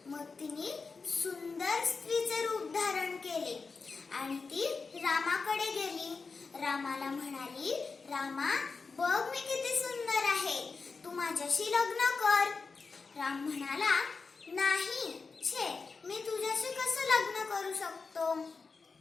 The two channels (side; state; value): right; quieter; 4.5 dB